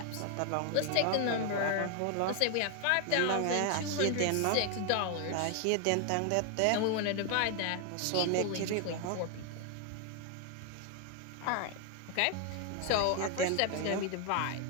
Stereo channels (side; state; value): both; different; correlation 0.01